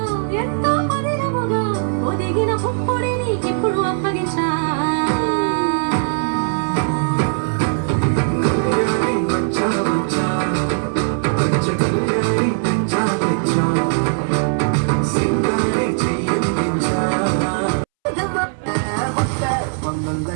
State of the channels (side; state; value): left; silent; 66 dB below the other